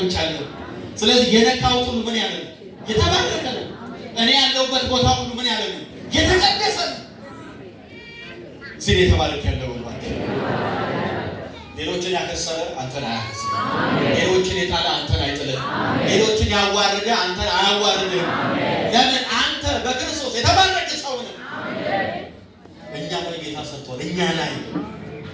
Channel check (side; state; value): both; identical; correlation 1.00